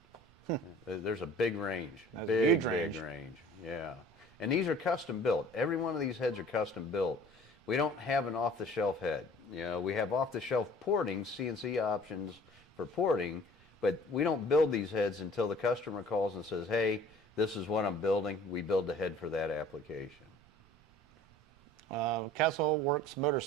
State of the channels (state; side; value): noise; right; rumble, 28 dB below the sound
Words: There's a big range. That's big a huge range. Yeah. And these are custom built. Every one of these heads are custom built. We don't have an off-the-shelf head. You know, we have off-the-shelf porting, CNC options for porting, but we don't build these heads until the customer calls and says, hey, this is what I'm building. We build the head for that application. Castle Works